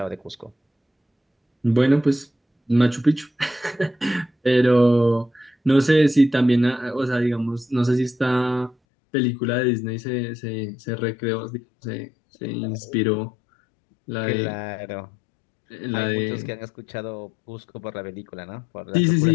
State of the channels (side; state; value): right; drops out; at 8.8 s